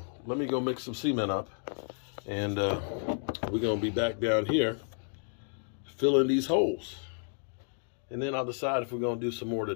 let me go mix some cement up, and we're going to be back down here filling these holes. And then I'll decide if we're going to do some more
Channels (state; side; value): silent; right; 57 dB below the other